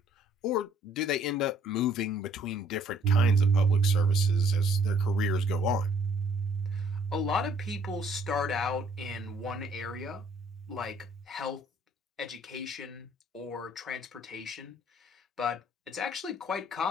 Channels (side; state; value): both; normal; correlation 0.61